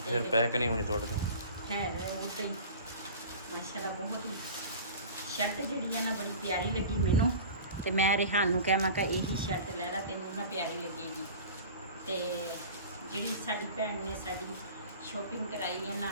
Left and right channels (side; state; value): both; inverted; correlation -0.38